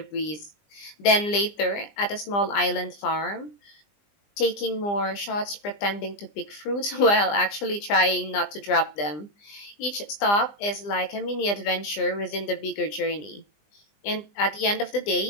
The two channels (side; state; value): right; late; 20 ms